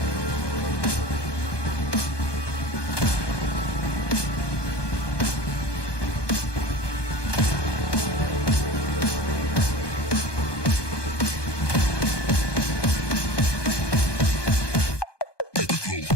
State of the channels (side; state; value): right; late; 1.2 ms